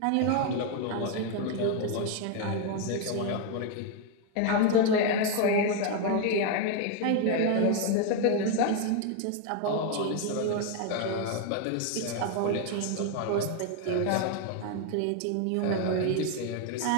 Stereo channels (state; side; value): different; both; correlation 0.01